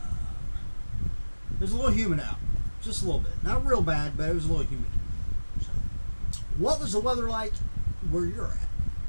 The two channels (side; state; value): both; inverted; correlation -1.00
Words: There's a little humid out, just a little bit. Not real bad, but it was a little humid. So, what was the weather like where you're at?